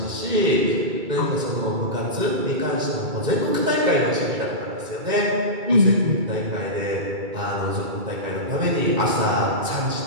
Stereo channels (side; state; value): left; late; 2.3 ms